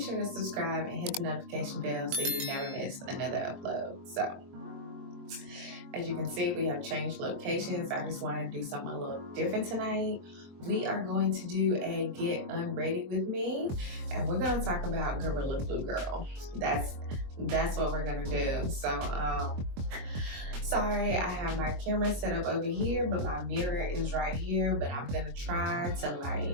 to subscribe and hit the notification bell so you never miss another upload. So as you can see, we have changed locations. I just wanted to do something a little different tonight. We are going to do a Get Unready with me, and we're going to talk about Gorilla Glue Girl. That's what we're gonna do. So sorry, I have my camera set up over here, but my mirror is right here, but I'm gonna try to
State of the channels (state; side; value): late; left; 22 ms